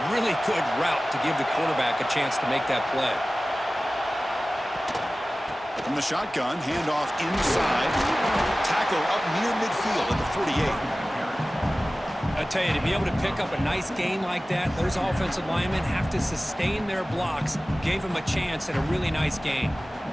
really good route to give the quarterback a chance to make that play. From the shotgun, handoff inside. Tackle up near midfield at the 48. I tell you, to be able to pick up a nice gain like that, those offensive linemen have to sustain their blocks. Gave them a chance at a really nice gain.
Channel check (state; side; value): normal; both; correlation 0.97